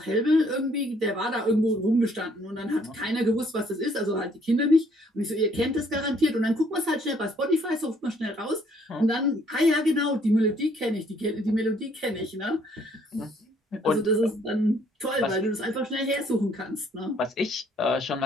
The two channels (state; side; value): normal; both; correlation 0.64